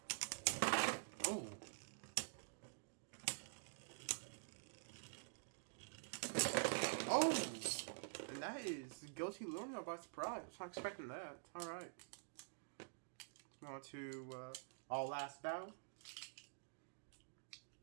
Oh. Oh! And that is Guilty Luinor by surprise. I was not expecting that. Alright. On to our last battle.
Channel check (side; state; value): left; silent; digital silence